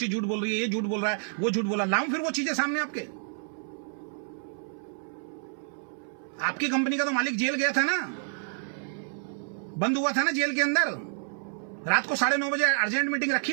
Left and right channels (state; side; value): silent; left; 59 dB below the other